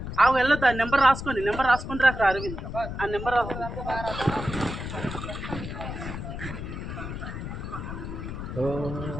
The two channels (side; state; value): left; noise; rumble, 7 dB below the sound